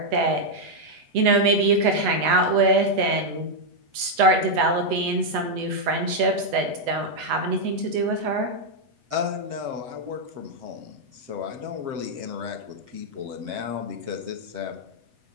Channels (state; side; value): late; left; 8.1 ms